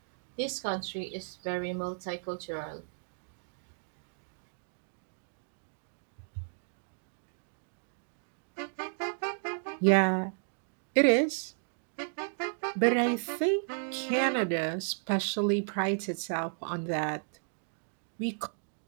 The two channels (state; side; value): silent; left; digital silence